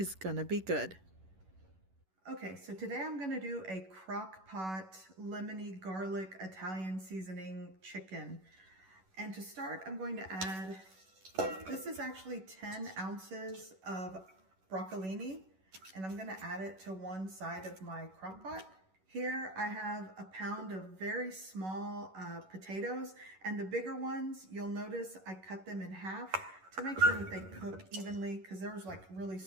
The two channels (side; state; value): left; late; 11 ms